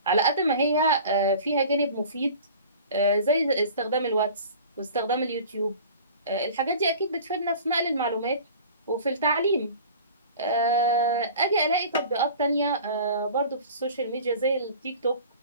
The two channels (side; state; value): both; inverted; correlation -0.42